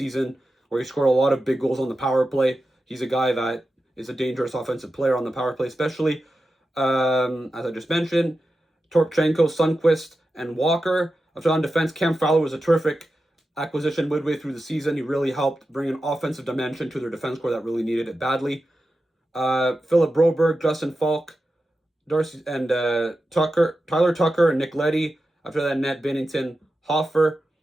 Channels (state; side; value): normal; both; correlation 0.91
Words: where he scored a lot of big goals on the power play. He's a guy that is a dangerous offensive player on the power play, especially, as I just mentioned, Torpchenko, Sundqvist, and Walker. After on defense, Cam Fowler was a terrific acquisition midway through the season. He really helped bring an offensive dimension to their defense core that really needed it badly. Philip Broberg, Justin Falk, Darcy and Tyler Tucker, and Nick Leddy. After that, Ned Binnington, Hoffer.